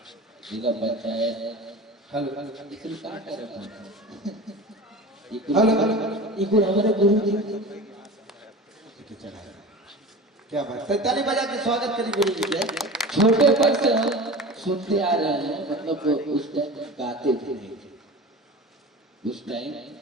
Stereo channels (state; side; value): normal; both; correlation 0.34